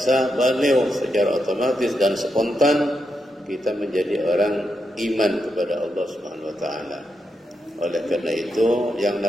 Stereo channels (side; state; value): both; normal; correlation 0.84